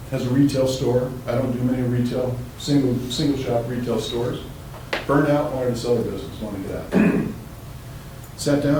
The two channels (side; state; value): both; identical; correlation 1.00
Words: has a retail store. I don't do many retail, single shop retail stores. Burned out, wanted to sell her business, wanted to get out. Sat